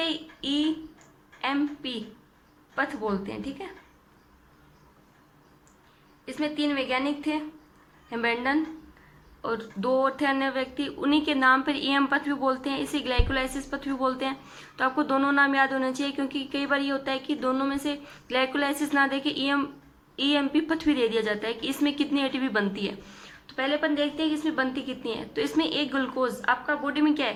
EMP पथ बोलते हैं, ठीक है। इसमें 3 वैज्ञानिक थे, हेम्बेल्डन, और दो और थे अन्य व्यक्ति, उन्हीं के नाम पर ईएम पथ भी बोलते हैं, इसे ग्लाइकोलाइसिस पथ भी बोलते हैं। तो आपको दोनों नाम याद होने चाहिए, क्योंकि कई बार ये होता है कि दोनों में से ग्लाइकोलाइसिस ना दे के ईएमपी पथ भी दे दिया जाता है कि इसमें कितनी एटीपी बनती है। तो पहले अपन देखते हैं कि इसमें बनती कितनी है। तो इसमें एक ग्लूकोज आपका बॉडी में क्या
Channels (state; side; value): identical; both; correlation 1.00